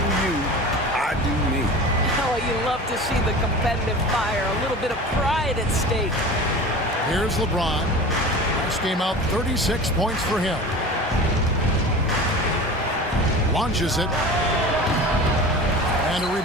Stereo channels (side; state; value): both; normal; correlation 0.35